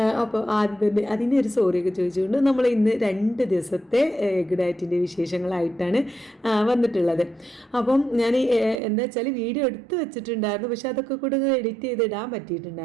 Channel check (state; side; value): drops out; left; at 8.8 s